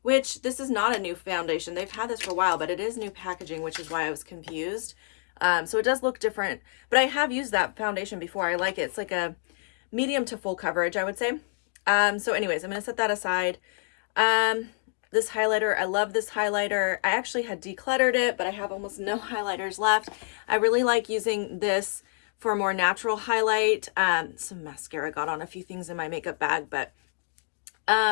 which this is not a new foundation. They've had this for a while, but it is new packaging, which is why I was confused. So it does look different, but I have used that foundation before. I like it. It's like a medium to full coverage, I would say. So anyways, I'm gonna set that aside. This highlighter, I love this highlighter. I actually had decluttered it, but I have almost no highlighters left. I really like using this for a more natural highlight. Some mascara got on a few things in my makeup bag, but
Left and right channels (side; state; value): right; silent; 60 dB below the other